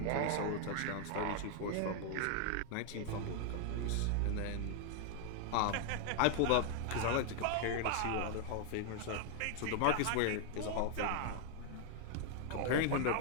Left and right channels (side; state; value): both; different; correlation 0.00